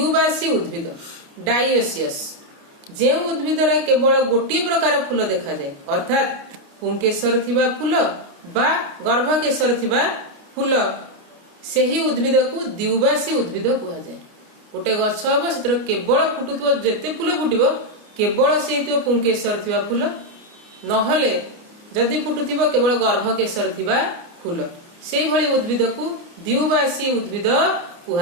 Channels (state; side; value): late; left; 29 ms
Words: उद्भिद डाइओसियस। जे उद्भिद रे केवल गोटे प्रकार फूल देखा जाए, अर्थात पुंकेसर थिबा फूल बा गर्भकेशर थिबा फूल, सेही उद्भिद को द्विबासी उद्भिद कह जाए। गोटे गछ हबो, सेतर केवल फुटुथिबो, जेते फूल फुटिबो केवल से पुंकेसर थिबा फूल, नहले जदि फुटुथिबो केवल गर्भकेशर थिबा फूल, सेही भली उद्भिद को द्विबासी उद्भिद